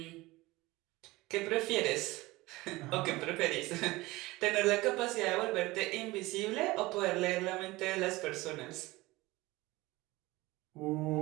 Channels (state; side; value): quieter; left; 20.4 dB